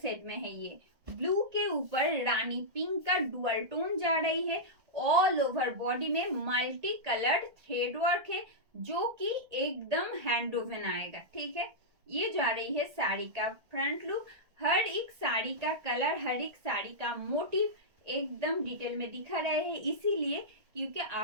set में है ये. Blue के ऊपर रानी पिंक का डुअल टोन जा रही है. ऑल ओवर बॉडी में मल्टी कलर्ड थ्रेड वर्क है जो कि एकदम हैंड वोवन आएगा. ठीक है, ये जा रही है साड़ी का फ्रंट लुक. हर एक साड़ी का कलर, हर एक साड़ी का मोटिव एकदम डिटेल में दिखा रहे हैं, इसीलिए क्योंकि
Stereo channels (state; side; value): late; left; 1.7 ms